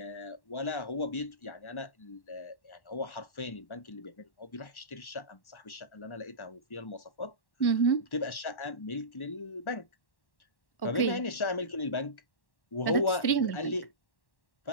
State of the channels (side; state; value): right; late; 1.1 ms